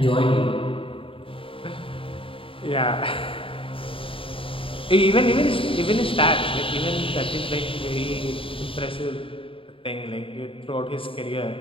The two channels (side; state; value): right; late; 0.26 ms